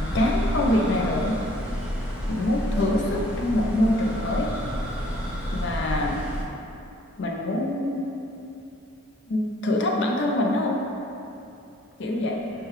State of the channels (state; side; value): normal; both; correlation 0.61